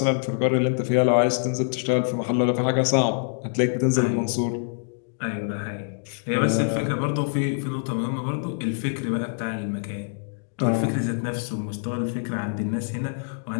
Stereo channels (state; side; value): silent; right; digital silence